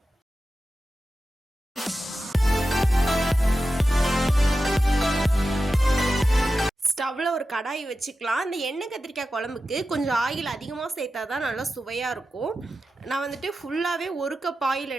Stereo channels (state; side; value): normal; both; correlation 0.92